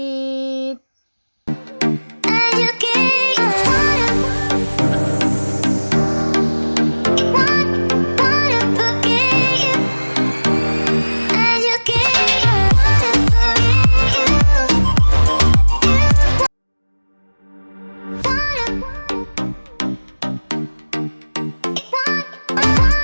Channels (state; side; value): inverted; both; correlation -1.00